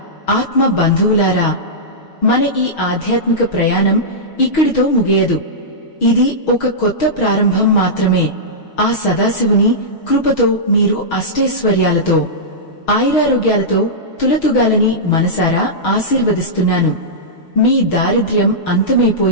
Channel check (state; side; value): late; right; 6.3 ms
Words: ఆత్మ బంధువులారా, మన ఈ ఆధ్యాత్మిక ప్రయాణం ఇక్కడితో ముగియదు. ఇది ఒక కొత్త ప్రారంభం మాత్రమే. ఆ సదాశివుని కృపతో మీరు అష్టైశ్వర్యాలతో, ఆయురారోగ్యాలతో తులతుగాలని మనసారా ఆశీర్వదిస్తున్నాను. మీ దారిద్ర్యం